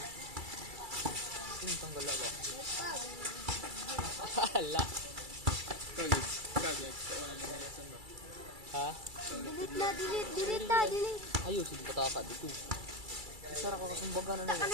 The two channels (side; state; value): left; late; 2.3 ms